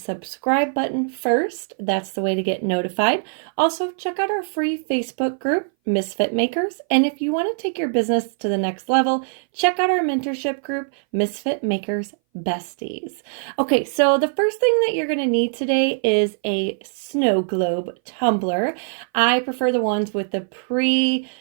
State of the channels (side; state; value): left; silent; 60 dB below the other